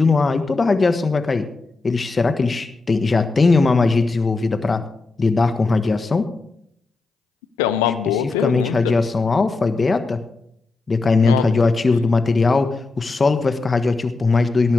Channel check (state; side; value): quieter; right; 3.7 dB